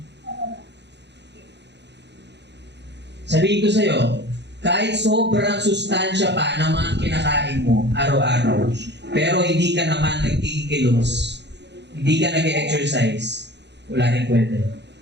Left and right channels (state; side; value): late; left; 0.50 ms